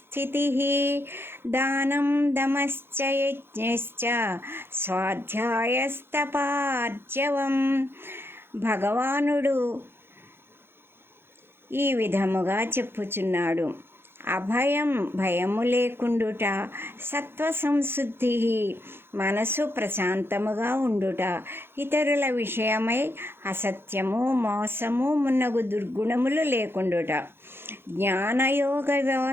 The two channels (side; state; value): left; late; 0.11 ms